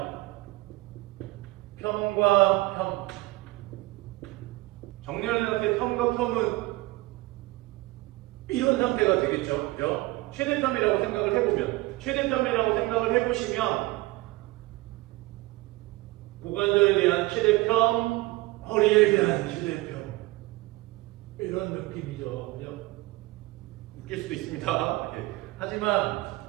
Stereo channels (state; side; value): quieter; left; 20.4 dB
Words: 평과 평. 정렬된 상태 평과 평은 이런 상태가 되겠죠. 그죠? 최대평이라고 생각을 해보면, 최대평이라고 생각을 해보시면 고관절에 대한 최대평, 허리에 대한 최대평, 이런 느낌이죠. 그죠? 웃길 수도 있습니다. 예.